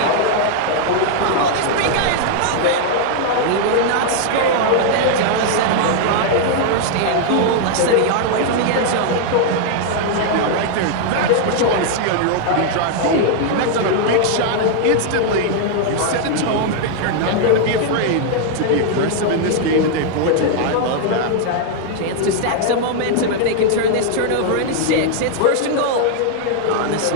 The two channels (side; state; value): both; different; correlation 0.00